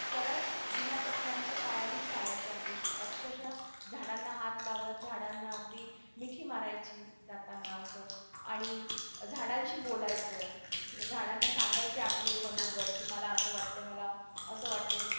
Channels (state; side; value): inverted; both; correlation -1.00